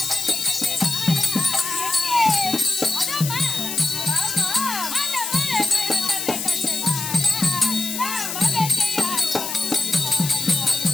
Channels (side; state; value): left; noise; hiss, 5 dB below the sound